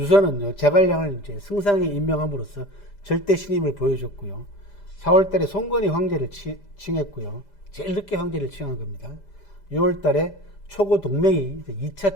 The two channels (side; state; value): right; late; 5.0 ms